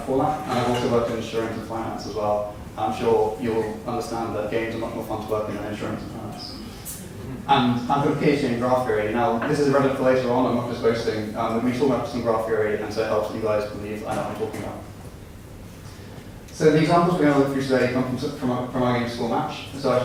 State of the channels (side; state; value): both; identical; correlation 1.00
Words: that, and I've also worked in insurance and finance as well. I'm sure you'll understand that games are much more fun to work in than insurance and finance. And I've got a PhD in graph theory. Now, this is relevant for later on, I'm not just boasting. We talk about some graph theory, and so it helps you guys believe I know what I'm talking about. So the examples we're going to look through today come from our game School Match. So I